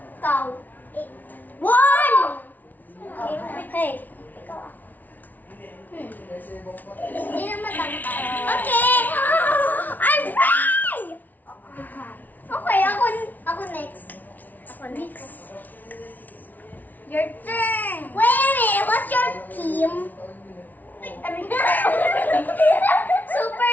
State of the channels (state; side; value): late; right; 0.080 ms